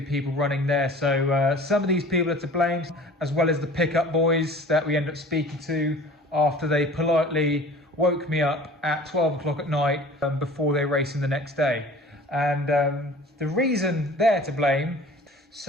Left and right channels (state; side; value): normal; both; correlation 0.44